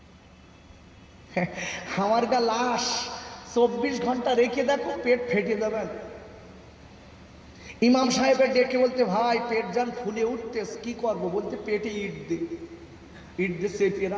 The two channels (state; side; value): identical; both; correlation 1.00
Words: আমার গা লাশ 24 ঘন্টা রেখে দেখো, পেট ফেটে যাবেন। ইমাম সাহেবের ডেকে বলতে, ভাই পেট যান ফুলে উঠতেস, কি করবো? বলতে, পেটে ইট দে চেপে